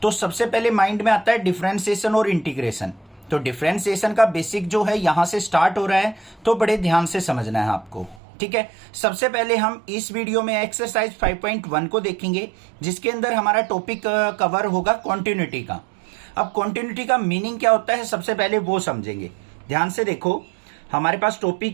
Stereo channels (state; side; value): drops out; left; at 8.2 s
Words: तो सबसे पहले माइंड में आता है डिफरेंशिएशन और इंटीग्रेशन। तो डिफरेंशिएशन का बेसिक जो है यहाँ से स्टार्ट हो रहा है, तो बड़े ध्यान से समझना है आपको, ठीक है। सबसे पहले हम इस वीडियो में एक्सरसाइज 5.1 को देखेंगे, जिसके अंदर हमारा टॉपिक कवर होगा कॉन्टिन्यूटी का। अब कॉन्टिन्यूटी का मीनिंग क्या होता है सबसे पहले वो समझेंगे। ध्यान से देखो, हमारे पास